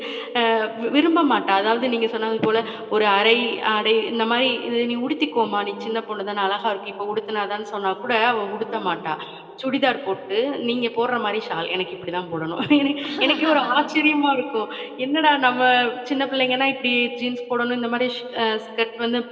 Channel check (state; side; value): identical; both; correlation 1.00